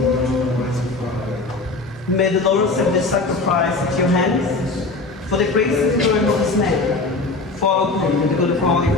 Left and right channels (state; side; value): quieter; right; 3.4 dB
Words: Almighty Father. May the Lord accept this sacrifice at your hands for the grace and glory of his name, for good and the good of all